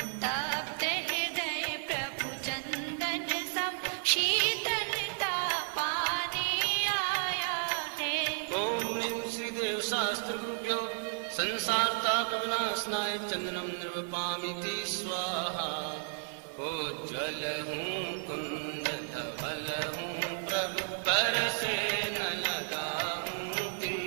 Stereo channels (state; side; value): silent; left; digital silence